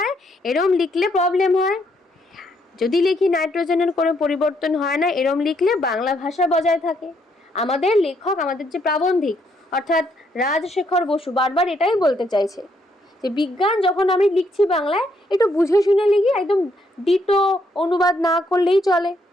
এরম লিখলে প্রবলেম হয়। যদি লিখি নাইট্রোজেনের কোনো পরিবর্তন হয় না, এরম লিখলে বাংলা ভাষা বজায় থাকে। আমাদের লেখক, আমাদের যে প্রাবন্ধিক অর্থাৎ রাজশেখর বসু বারবার এটাই বলতে চাইছে যে বিজ্ঞান যখন আমি লিখছি বাংলায়, একটু বুঝে শুনে লিখি, একদম ডিটো অনুবাদ না করলেই চলে।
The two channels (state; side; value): normal; both; correlation 0.73